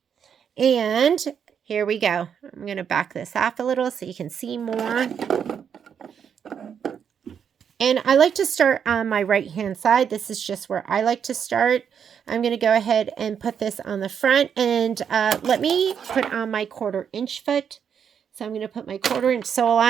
And here we go. I'm going to back this off a little so you can see more. And I like to start on my right-hand side. This is just where I like to start. I'm going to go ahead and put this on the front. And let me put on my 1/4 inch foot. So I'm going to put my 1/4 inch sole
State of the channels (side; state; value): left; quieter; 7.7 dB